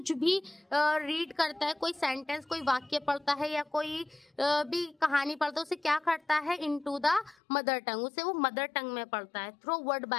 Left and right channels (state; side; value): drops out; right; at 7.4 s